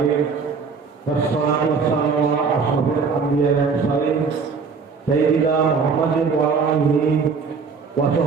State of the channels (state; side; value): quieter; left; 5.2 dB